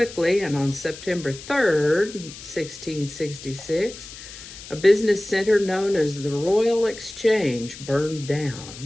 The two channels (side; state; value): left; noise; hiss, 15 dB below the sound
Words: and on September 3rd, 1666, a business center known as the Royal Exchange burned